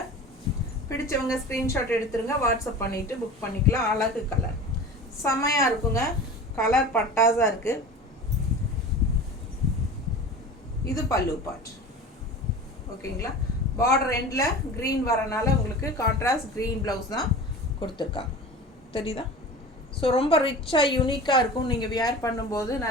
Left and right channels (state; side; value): normal; both; correlation 0.35